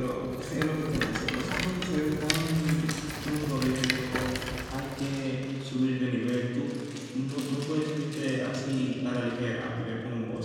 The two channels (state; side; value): identical; both; correlation 1.00